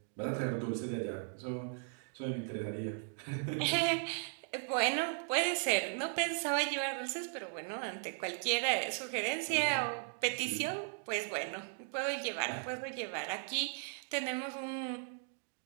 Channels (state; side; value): silent; left; 53 dB below the other